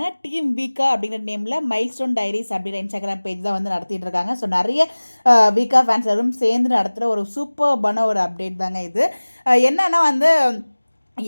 டீம் வீக்கா அப்படிங்கிற நேமில் மைல்ஸ்டோன் டைரிஸ் அப்படிங்கிற இன்ஸ்டாகிராம் பேஜ் தான் வந்து நடத்திட்டு இருக்காங்க. ஸோ நிறைய வீக்கா ஃபேன்ஸ் எல்லாரும் சேர்ந்து நடத்துகிற ஒரு சூப்பர்பான ஒரு அப்டேட் தாங்க இது. என்னன்னா வந்து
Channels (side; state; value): both; inverted; correlation -1.00